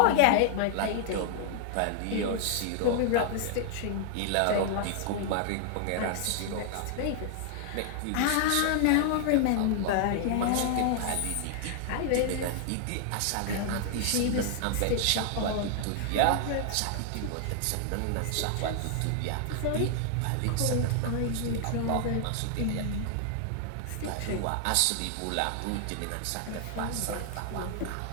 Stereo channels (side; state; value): both; different; correlation 0.00